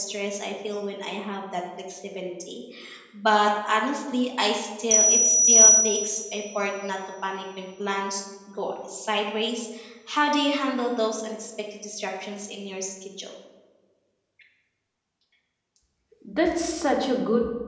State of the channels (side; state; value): both; identical; correlation 1.00